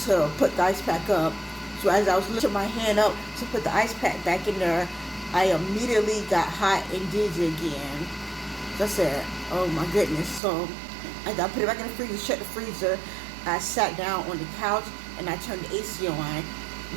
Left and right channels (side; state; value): left; drops out; at 10.4 s